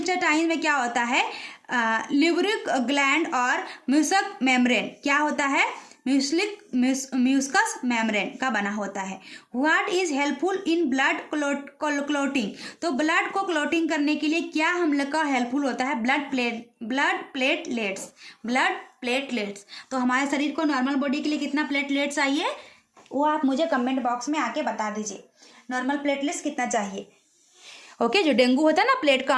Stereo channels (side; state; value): both; identical; correlation 1.00